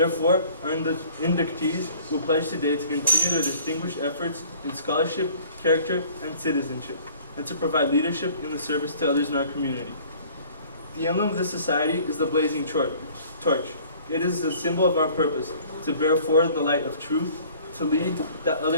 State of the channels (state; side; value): inverted; both; correlation -0.52